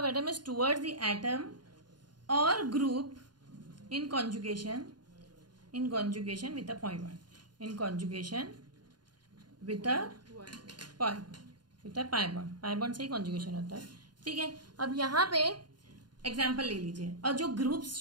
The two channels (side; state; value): left; late; 0.71 ms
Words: atom is towards the atom और group in conjugation with a point one, in conjugation with a pi bond से ही conjugation होता है। ठीक है, अब यहाँ पे एग्जाम्पल ले लीजिए, और जो ग्रुप्स